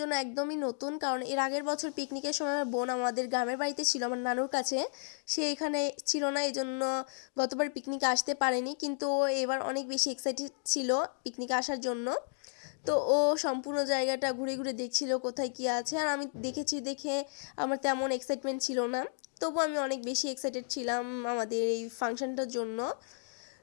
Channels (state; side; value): silent; right; digital silence